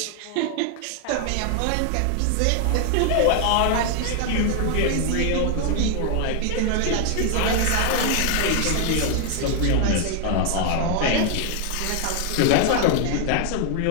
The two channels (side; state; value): both; different; correlation 0.00